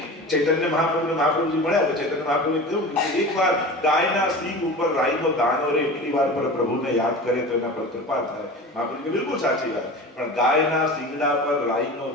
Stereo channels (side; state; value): both; normal; correlation 0.33